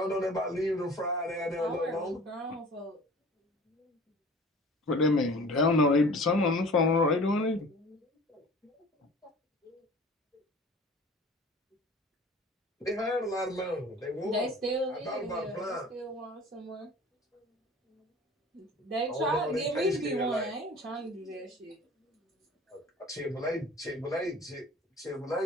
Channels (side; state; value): both; normal; correlation 0.44